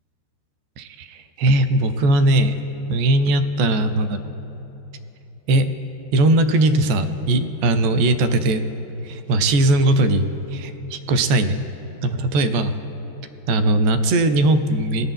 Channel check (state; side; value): late; left; 13 ms